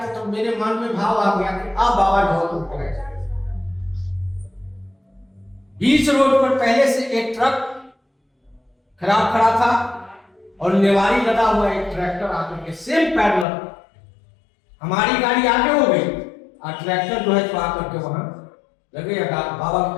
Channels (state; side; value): drops out; right; at 13.5 s